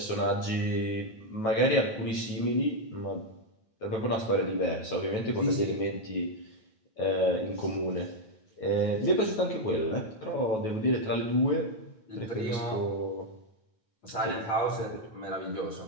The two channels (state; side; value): late; right; 9.2 ms